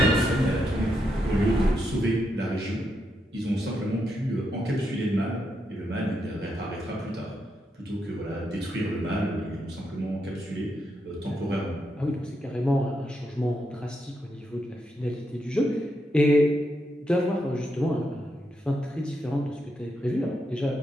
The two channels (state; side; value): normal; both; correlation 0.82